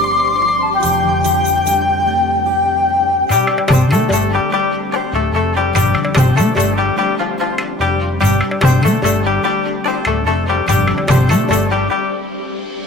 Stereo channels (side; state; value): both; normal; correlation 0.54